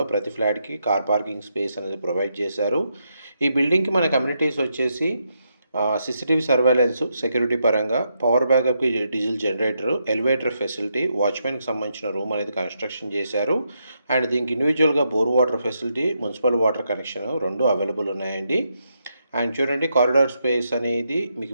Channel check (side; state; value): both; inverted; correlation -0.81